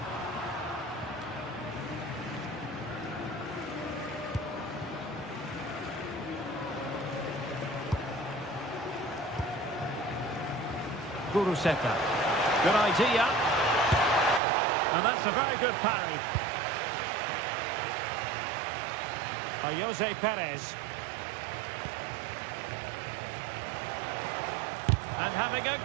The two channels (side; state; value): left; drops out; at 14.4 s